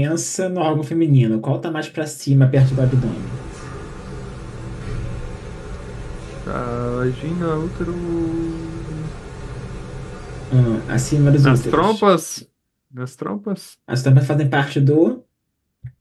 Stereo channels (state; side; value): identical; both; correlation 1.00